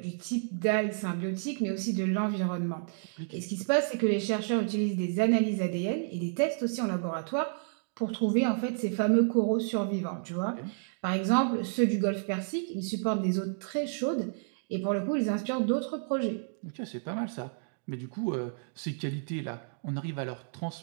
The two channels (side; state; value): left; silent; digital silence